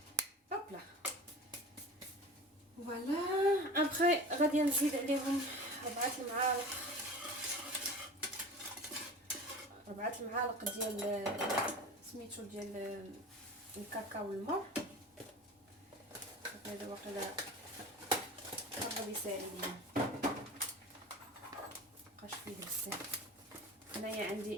هوبلا فوالا. ابخي غادي نزيد عليهم 4 المعالق ديال سميتو ديال الكاكاو والمر. هذا واقيلا قرب يساعدني، مابقاش فيه بزاف. هنايا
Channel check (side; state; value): both; normal; correlation 0.36